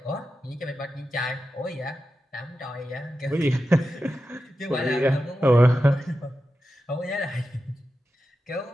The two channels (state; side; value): normal; both; correlation 0.91